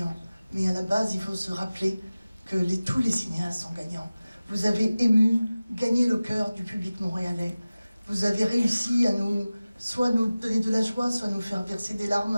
Mais à la base, il faut se rappeler que tous les cinéastes sont gagnants. Vous avez gagné le cœur du public montréalais. Vous avez réussi à soit nous donner de la joie, soit nous faire verser des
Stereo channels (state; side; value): inverted; both; correlation -0.96